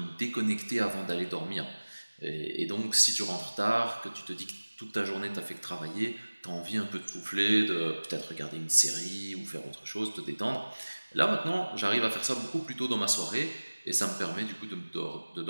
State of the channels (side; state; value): both; inverted; correlation -1.00